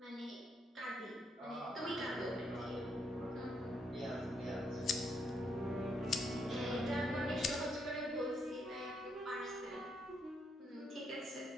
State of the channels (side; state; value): both; normal; correlation 0.76